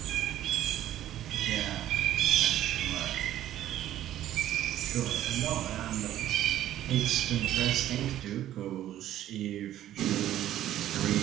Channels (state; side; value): quieter; left; 12.7 dB